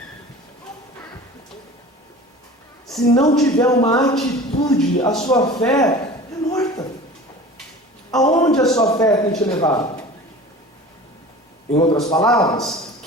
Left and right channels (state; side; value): normal; both; correlation 0.39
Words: Se não tiver uma atitude, a sua fé é morta. Aonde a sua fé tem te levado? Em outras palavras,